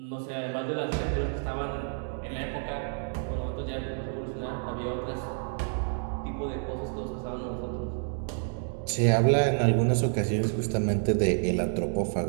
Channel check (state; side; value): silent; left; 58 dB below the other